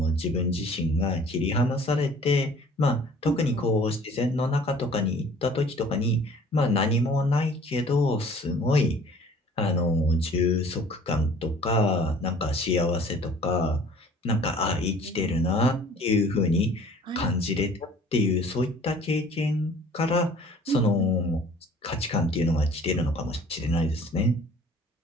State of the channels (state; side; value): normal; both; correlation 0.51